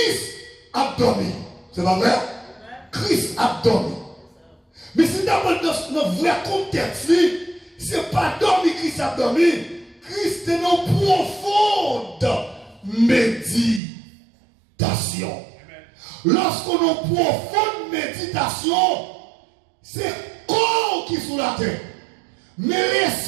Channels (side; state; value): left; drops out; at 13.8 s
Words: a dormi. C'est pas vrai? Christ a dormi. Mais si d'abord dans notre vrai contexte, ce n'est pas dormi Christ a dormi. Christ est dans profonde méditation. Lorsqu'on a une profonde méditation, c'est corps qui est sous la terre. Mais